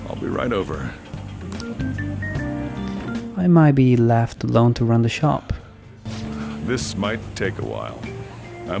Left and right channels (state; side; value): identical; both; correlation 1.00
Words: I'll be right over. I might be left alone to run the shop. This might take a while.